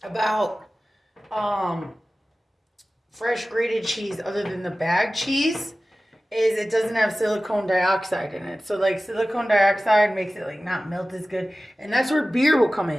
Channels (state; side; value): normal; both; correlation 0.96